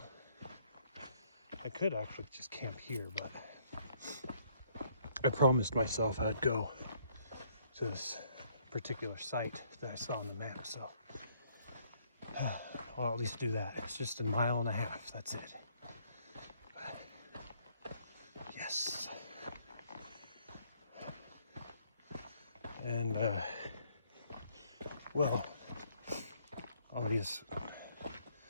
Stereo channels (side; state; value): both; inverted; correlation -0.67